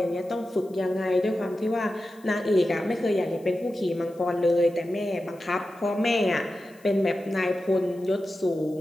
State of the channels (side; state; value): left; noise; hiss, 29 dB below the sound